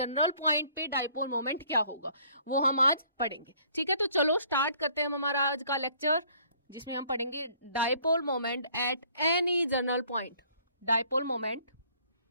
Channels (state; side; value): inverted; both; correlation -0.60